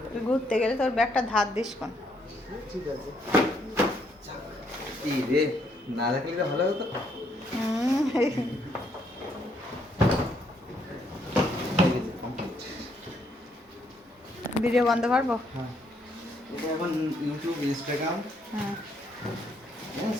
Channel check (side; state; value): both; normal; correlation 0.71